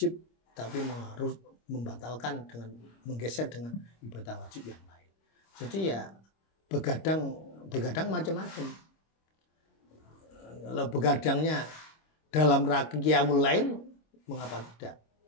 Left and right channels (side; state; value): right; late; 26 ms